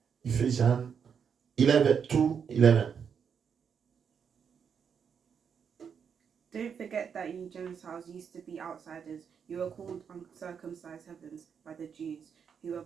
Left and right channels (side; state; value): left; quieter; 7.0 dB